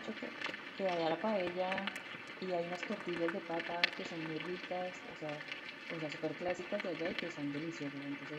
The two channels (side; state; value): both; identical; correlation 1.00